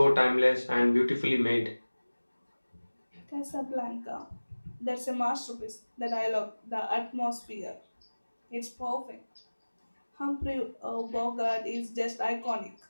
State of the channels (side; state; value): both; inverted; correlation -1.00